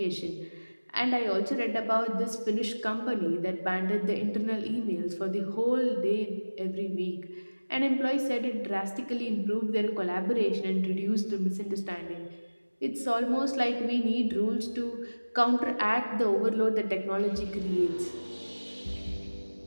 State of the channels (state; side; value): inverted; both; correlation -1.00